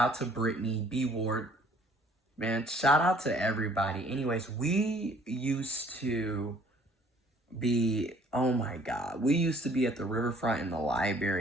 to Brittany, B Ward. Man, shout out to everybody. Anyways, we used to be, oh my God, we used to be at the riverfront in the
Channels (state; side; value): normal; both; correlation 0.57